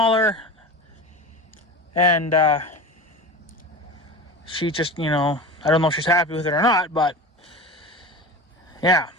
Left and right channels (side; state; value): both; normal; correlation 0.31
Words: and she just, you know, I don't know if she's happy with it or not, but yeah.